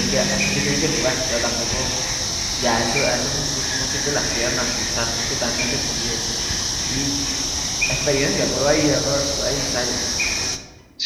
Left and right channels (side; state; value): both; identical; correlation 1.00